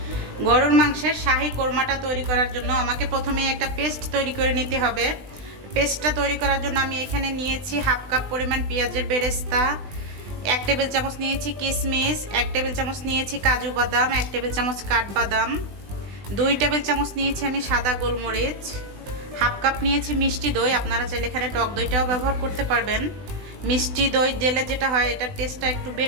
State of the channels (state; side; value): late; left; 20 ms